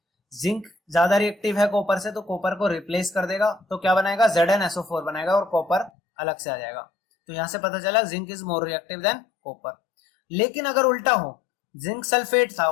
जिंक ज्यादा रिएक्टिव है कॉपर से, तो कॉपर को रिप्लेस कर देगा, तो क्या बनाएगा? ZnSO4 बनाएगा और कॉपर अलग से आ जाएगा। तो यहां से पता चला zinc is more reactive than copper. लेकिन अगर उल्टा हो, जिंक सल्फेट था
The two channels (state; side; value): drops out; right; at 5.9 s